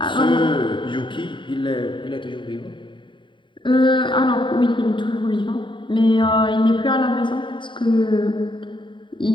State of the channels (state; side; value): late; right; 0.23 ms